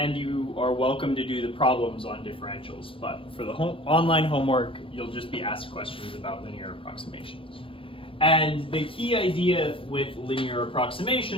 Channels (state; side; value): late; right; 0.26 ms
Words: you are welcome to do the problems on differentials, but for the online homework, you'll just be asked questions about linear approximations. And the key idea with linear